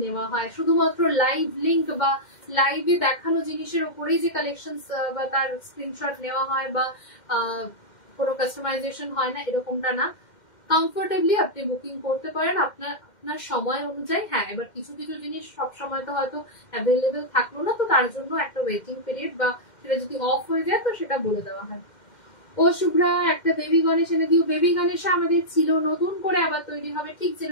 নেওয়া হয়। শুধুমাত্র লাইভ লিংক বা লাইভে দেখানো জিনিসের উপরেই যে কালেকশন বা তার স্ক্রিনশট নেওয়া হয় বা কোনো কাস্টমাইজেশন হয় না, এরকমটা না। কমফোর্টেবলি আপনি বুকিং করতে পারেন আপনার সময় অনুযায়ী। হ্যাঁ এবার কিছু কিছু জিনিস সব সময় তো হয়তো অ্যাভেলেবেল থাকলো না, তো তার জন্য একটা ওয়েটিং পিরিয়ড বা সেটা যদি অফ হয়ে যায় তো সেটা বলে দেওয়া হয়। ও শুভ্রা একটা বেবি গণেশ এনে দিও। বেবি গণেশা আমাদের ছিল, নতুন করে আবার তৈরি হবে, ঠিক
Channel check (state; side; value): late; right; 2.1 ms